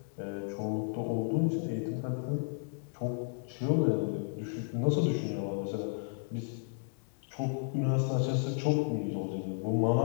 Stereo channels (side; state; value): right; silent; 56 dB below the other